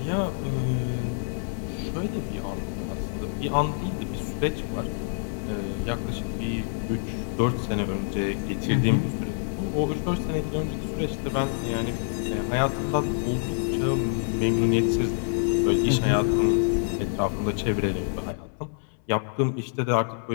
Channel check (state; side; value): silent; right; 59 dB below the other